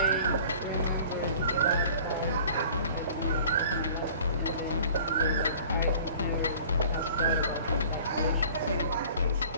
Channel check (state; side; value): inverted; both; correlation -0.47